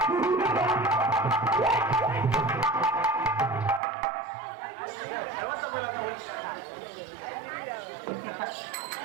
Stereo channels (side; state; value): left; drops out; at 3.8 s